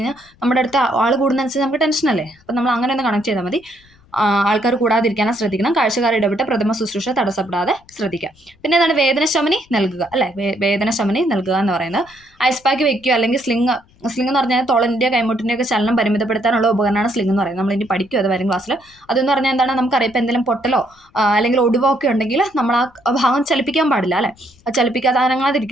നമ്മുടെ അടുത്ത് ആൾ കൂടുന്നതനുസരിച്ച് നമുക്ക് ടെൻഷനല്ലേ. അപ്പം നമ്മൾ അങ്ങനെ ഒന്ന് കണക്ട് ചെയ്താൽ മതി. ആൾക്കാർ കൂടാതിരിക്കാനും ശ്രദ്ധിക്കണം. കാഴ്ചക്കാർ ഇടപെട്ട് പ്രഥമ ശുശ്രൂഷ തടസ്സപ്പെടാതെ ശ്രദ്ധിക്കുക. പിന്നെ എന്താണ് വേദനശമനി നൽകുക അല്ലെ. വേദനശമനി നൽകുക എന്ന് പറയുന്നത് ഐസ് പാക്ക് വെക്കുക അല്ലെങ്കിൽ സ്ലിങ് എന്ന് പറഞ്ഞാൽ തൊളൻ്റെ കൈമുട്ടിൻ്റെ ഒക്കെ ചലനം പരിമിതപ്പെടുത്താനുള്ള ഉപകരണമാണ് സ്ലിങ് എന്ന് പറയുന്നത്. നമ്മൾ ഇനി പഠിക്കും അത് വരും ക്ലാസ്സിൽ. അതെന്ന് പറഞ്ഞാൽ എന്താണ് നമുക്കറിയാം ഇപ്പം എന്തെങ്കിലും പൊട്ടലോ അല്ലെങ്കിൽ ഒടിവോ ഒക്കെ ഉണ്ടെങ്കിൽ നമ്മൾ ആ ഭാഗം ചലിപ്പിക്കാൻ പാടില്ല അല്ലെ. അത് ചലിപ്പിക്കാതെ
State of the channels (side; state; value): left; noise; rumble, 30 dB below the sound